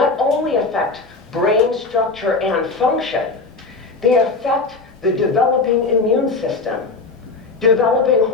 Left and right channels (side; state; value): right; quieter; 3.9 dB